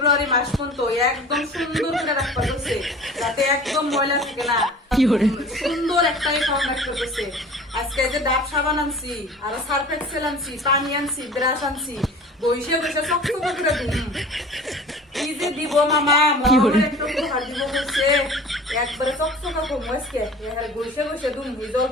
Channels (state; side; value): normal; both; correlation 0.42